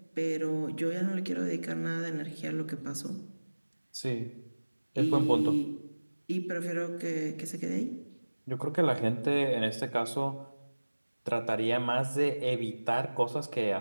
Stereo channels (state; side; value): inverted; both; correlation -1.00